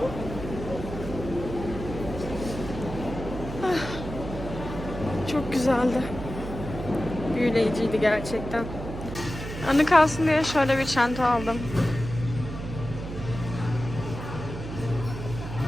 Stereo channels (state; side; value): noise; right; hum, 8 dB below the sound